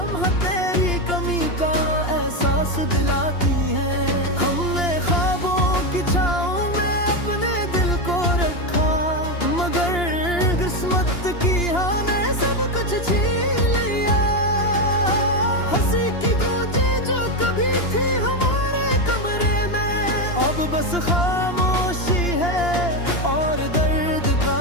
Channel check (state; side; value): late; right; 2.8 ms